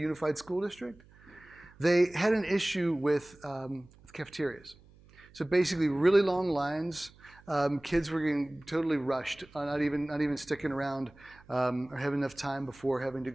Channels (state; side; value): noise; right; hum, 26 dB below the sound